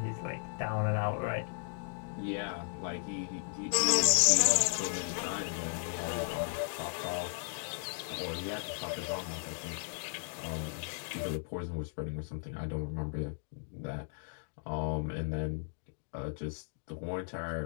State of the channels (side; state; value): right; silent; digital silence